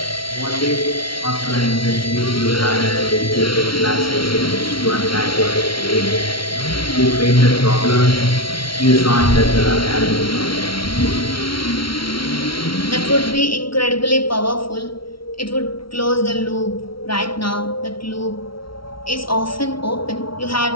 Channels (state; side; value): late; right; 0.74 ms